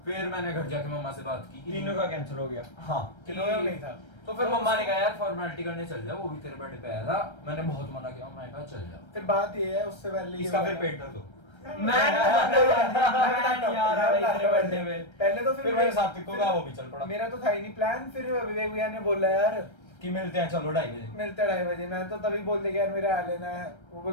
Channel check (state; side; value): late; right; 1.3 ms